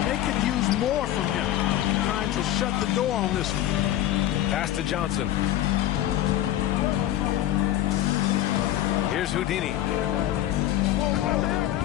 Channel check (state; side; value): quieter; right; 13.0 dB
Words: they could use more from him. Trying to shut the door on this one. Pass to Johnson. Here's Houdini.